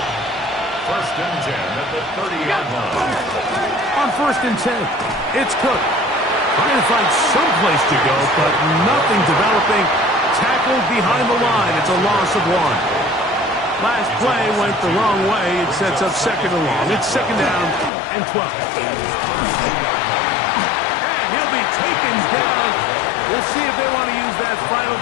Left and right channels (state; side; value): drops out; right; at 17.9 s